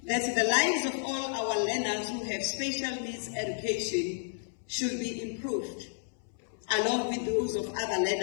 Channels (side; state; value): right; silent; 57 dB below the other